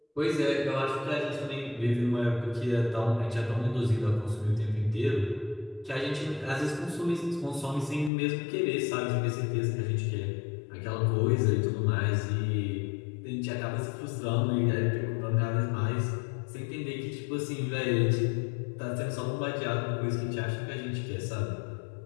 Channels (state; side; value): drops out; right; at 8.1 s